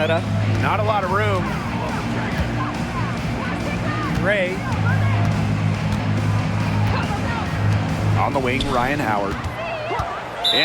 Not a lot of room. Gray. On the wing, Ryan Howard.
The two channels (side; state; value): both; identical; correlation 1.00